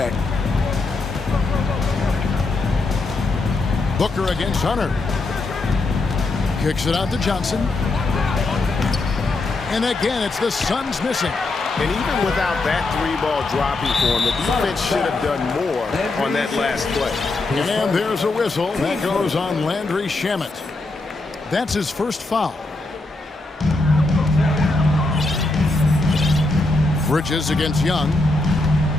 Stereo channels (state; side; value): quieter; right; 3.2 dB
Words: Booker against Hunter. Kicks it out to Johnson. And again, it's the Suns missing. And even without that 3-ball dropping for him, the defense should have done more on that last play. And there's a whistle. That goes on Landry Shamet. That's his first foul. Bridges against Young.